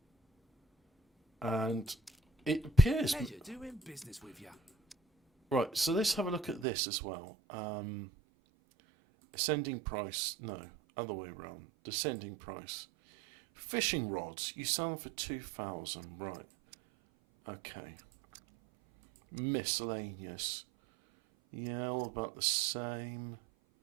And it appears... Pleasure doing business with you. Right, so let's have a look at this as well. Ascending price. No, other way around. Descending price. Fishing rods. You sell them for 2,000. Right. Okay. Miscellaneous. Yeah, all about the same.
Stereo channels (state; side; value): drops out; left; at 6.7 s